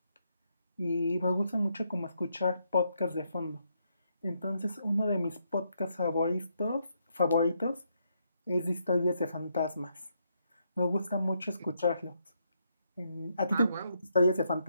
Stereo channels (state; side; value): inverted; both; correlation -0.77